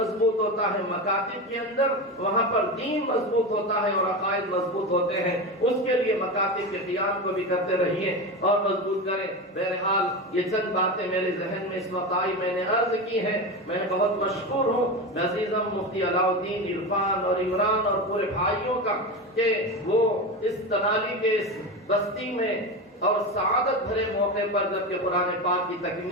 ہوتا ہے مکاتب کے اندر، وہاں پر دین مضبوط ہوتا ہے اور عقائد مضبوط ہوتے ہیں. اس کے لیے مکاتب کے قیام کو بھی کرتے رہیے اور مضبوط کریں. بہرحال یہ چند باتیں میرے ذہن میں اس وقت آئی، میں نے عرض کی ہے. میں بہت مشکور ہوں عزیزم مفتی علاء الدین عرفان اور عمران اور پورے بھائیوں کا کہ وہ اس تنالی کے اس بستی میں اور سعادت بھرے موقع پر جبکہ قرآن پاک کی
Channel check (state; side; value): normal; both; correlation 0.21